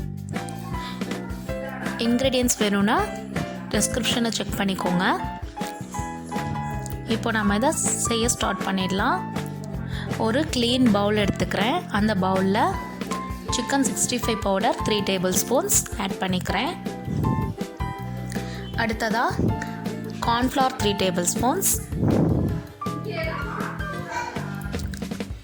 இன்க்ரீடியன்ட்ஸ் வேணும்னா டிஸ்கிரிப்ஷனை செக் பண்ணிக்கோங்க. இப்போ நம்ம இதை செய்ய ஸ்டார்ட் பண்ணிடலாம். ஒரு க்ளீன் பவுல் எடுத்துக்கிறேன். அந்த பவுலில் chicken 65 powder 3 table spoons add பண்ணிக்கிறேன். அடுத்ததாக கார்ன்ஃப்ளவர் 3 டேபிள் ஸ்பூன்ஸ்,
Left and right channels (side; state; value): both; identical; correlation 1.00